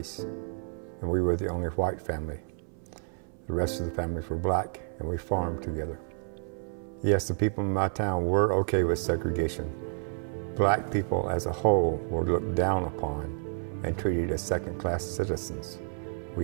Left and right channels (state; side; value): silent; left; 58 dB below the other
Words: and we were the only white family. The rest of the families were black, and we farmed together. Yes, the people in my town were okay with segregation. Black people as a whole were looked down upon and treated as second-class citizens.